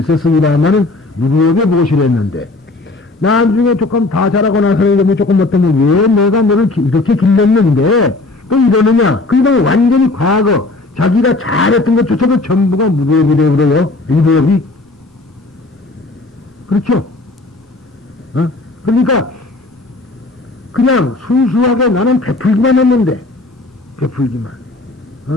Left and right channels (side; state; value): right; quieter; 3.2 dB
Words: 있었습니다만은 무리업에 보시를 했는데 나중에 조금 다 자라고 나서는 조금 어떠면 왜 내가 너를 이렇게 길렀는데 또 이러느냐. 그러니까 완전히 과거 자기가 잘했던 것조차도 전부가 무리업이래요. 그래요. 무리업이. 그렇죠? 그러니까 그냥 순수하게 나는 베풀기만 했는데 베풀기만.